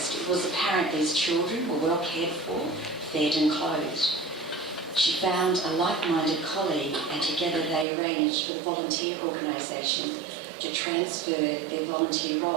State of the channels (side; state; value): left; drops out; at 7.9 s